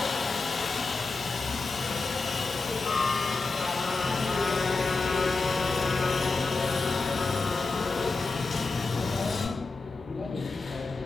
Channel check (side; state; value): right; quieter; 3.8 dB